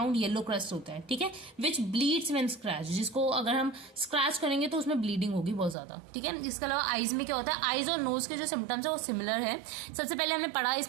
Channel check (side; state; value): left; drops out; at 5.8 s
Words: येलो क्रस्ट होता है, ठीक है, विच ब्लीड्स व्हेन स्क्रैच, जिसको अगर हम स्क्रैच करेंगे तो उसमें ब्लीडिंग होगी बहुत ज्यादा, ठीक है। इसके अलावा आईज में क्या होता है, आईज और नोज के जो सिम्टम्स है वो सिमिलर है। सबसे पहले हमने पढ़ा